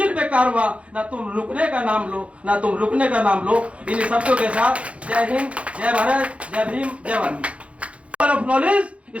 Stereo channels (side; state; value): left; late; 0.062 ms